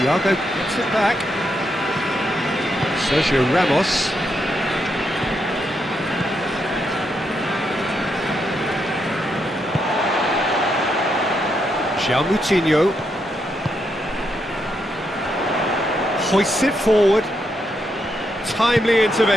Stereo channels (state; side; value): normal; both; correlation 0.80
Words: gets it back. Sergio Ramos. João Moutinho. Hoists it forward. Timely